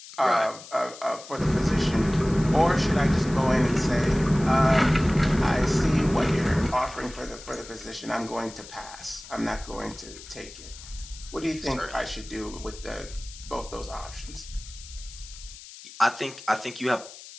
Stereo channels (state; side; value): noise; left; hiss, 16 dB below the sound